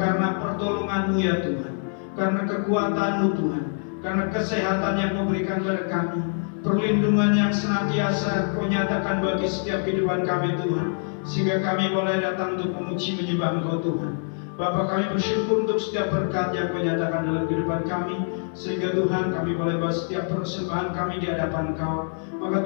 pertolongan-Mu ya Tuhan, karena kekuatan-Mu Tuhan, karena kesehatan yang Kau berikan kepada kami, perlindungan yang senantiasa Kau nyatakan bagi setiap kehidupan kami Tuhan, sehingga kami boleh datang untuk memuji menyembah Engkau Tuhan. Bapa, kami bersyukur untuk setiap berkat yang Kau nyatakan dalam kehidupan kami, sehingga Tuhan kami boleh bawa setiap persembahan kami di hadapan Kau. Maka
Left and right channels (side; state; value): right; silent; digital silence